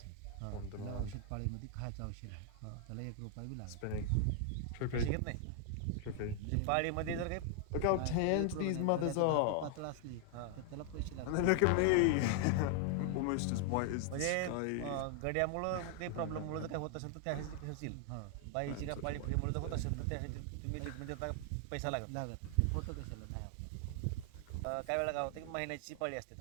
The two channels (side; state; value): both; different; correlation 0.00